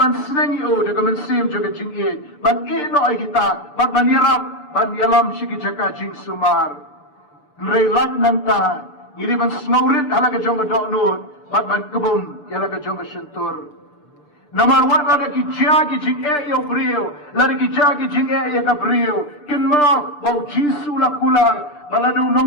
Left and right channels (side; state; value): right; late; 6.8 ms